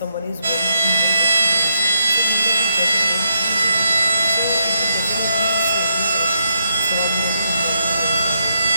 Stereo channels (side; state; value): both; inverted; correlation -0.79